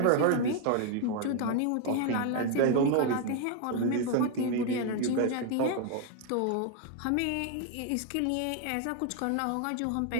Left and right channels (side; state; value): both; different; correlation 0.00